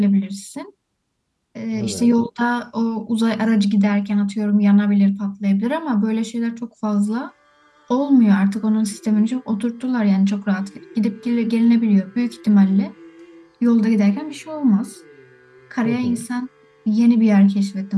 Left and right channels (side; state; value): both; identical; correlation 1.00